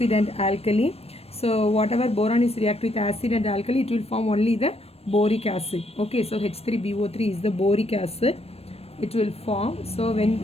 and alkali. So whatever boron is react with acid and alkali, it will form only the boric acid. Okay, so H3BO3 is the boric acid. It will form. So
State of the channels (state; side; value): late; right; 0.29 ms